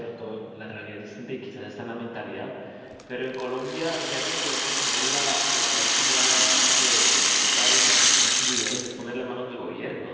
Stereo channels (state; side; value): identical; both; correlation 1.00